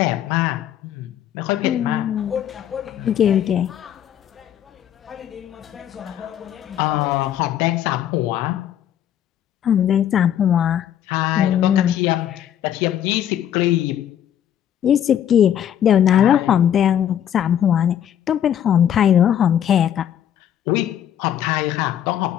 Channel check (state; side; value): quieter; right; 10.2 dB